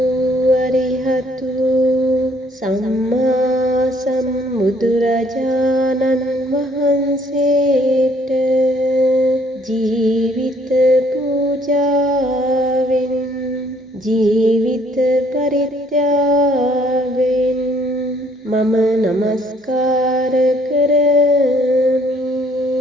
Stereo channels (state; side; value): normal; both; correlation 0.63